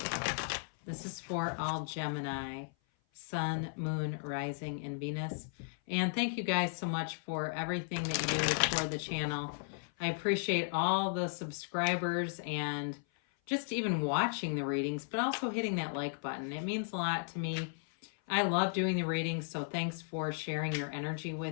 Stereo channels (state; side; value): silent; right; 54 dB below the other